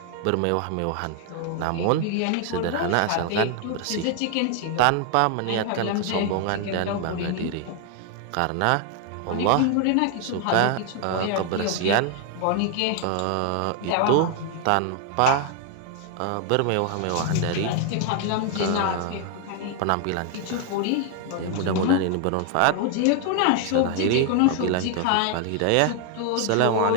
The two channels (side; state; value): both; different; correlation 0.00